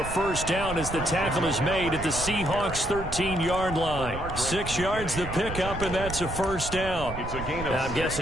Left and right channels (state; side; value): noise; right; rumble, 10 dB below the sound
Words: first down as the tackle is made at the Seahawks 13-yard line. 6 yards the pickup, and that's a first down. Now, I'm